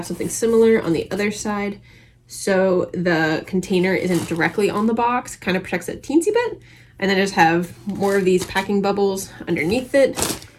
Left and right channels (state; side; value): identical; both; correlation 1.00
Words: something similar on the other side. So the container isn't directly on the box, kind of protects it a teensy bit. And then I just have more of these packing bubbles underneath it,